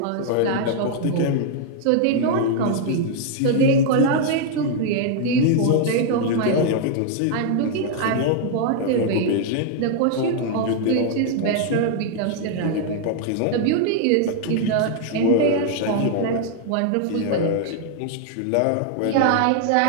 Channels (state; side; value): different; both; correlation 0.00